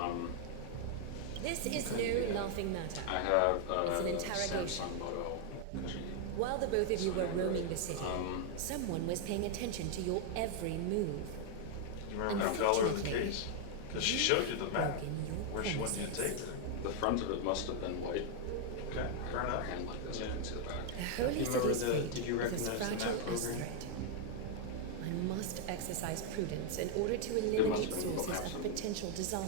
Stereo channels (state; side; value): different; both; correlation 0.00